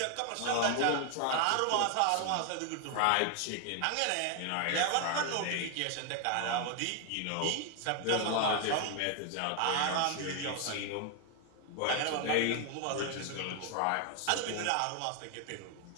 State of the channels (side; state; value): both; different; correlation 0.01